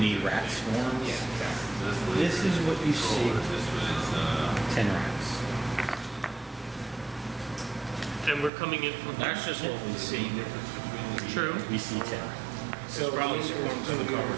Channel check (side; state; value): left; drops out; at 8.5 s